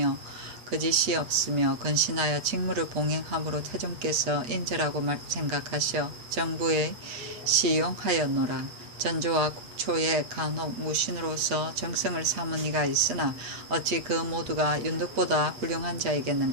거짓이 없으며 건신하여 직무를 봉행함으로 태종께서 인재라고 생각하셔 정부에 시용하였노라. 전조와 국초의 간혹 무신으로서 정성을 삼은 이가 있으나 어찌 그 모두가 윤덕보다 훌륭한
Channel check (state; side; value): late; left; 8.2 ms